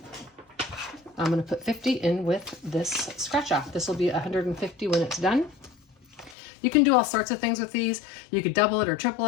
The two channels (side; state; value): right; drops out; at 6.4 s